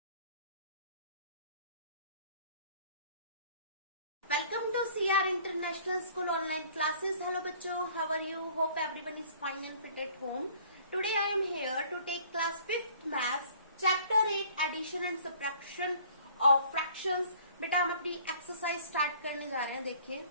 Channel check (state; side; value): inverted; both; correlation -0.54